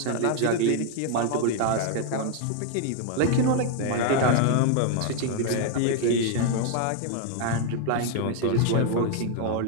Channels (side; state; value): both; different; correlation 0.00